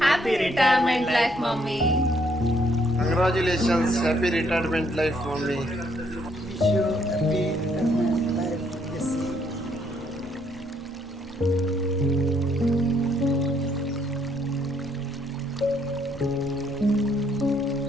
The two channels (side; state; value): both; normal; correlation 0.70